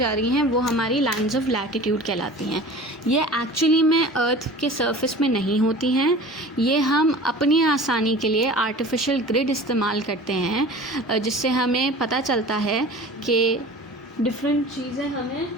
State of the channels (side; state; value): both; normal; correlation 0.40